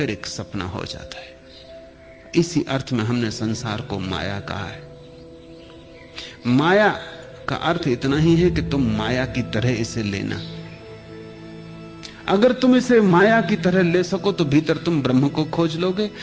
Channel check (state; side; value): identical; both; correlation 1.00